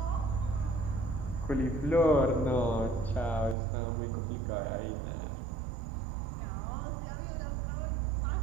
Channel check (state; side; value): drops out; left; at 3.6 s